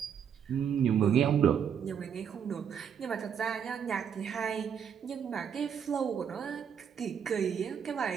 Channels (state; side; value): quieter; left; 7.8 dB